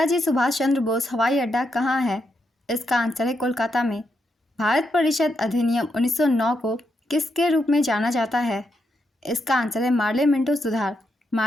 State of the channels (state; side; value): normal; both; correlation 0.82